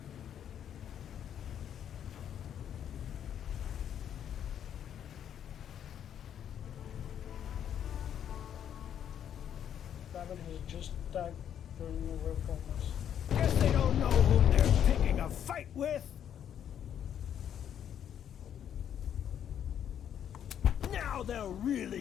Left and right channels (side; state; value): right; quieter; 9.4 dB